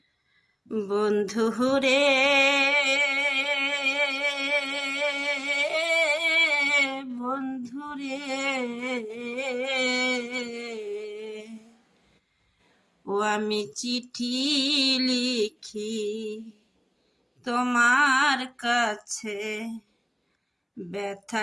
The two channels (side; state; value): both; identical; correlation 1.00